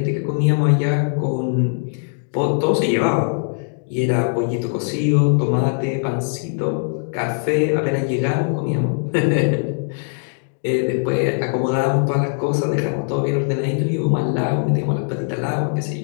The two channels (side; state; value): right; silent; digital silence